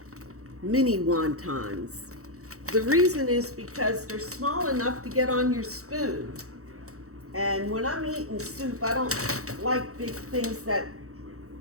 mini wontons. The reason is because they're small enough to get on your spoon. And when I'm eating soup, I don't like big things that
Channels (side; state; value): left; late; 0.65 ms